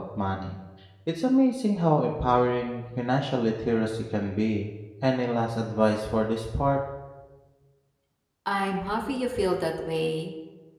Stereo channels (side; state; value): both; identical; correlation 1.00